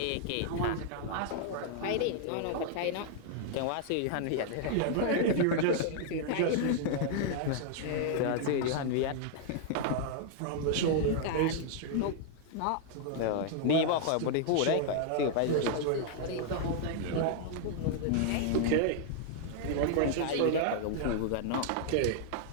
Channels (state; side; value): different; both; correlation -0.01